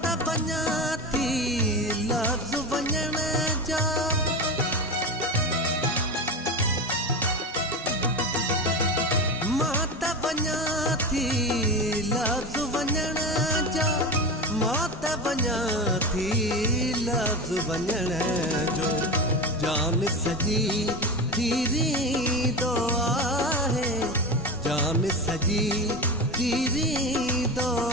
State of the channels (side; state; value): both; normal; correlation 0.22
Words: त वञां थी लफ़्ज़ वञण जा, मां त वञां थी लफ़्ज़ वञण जा, मां त वञां थी लफ़्ज़ वञण जो। जान सॼी थी रींदो आहे, जान सॼी थी रींदो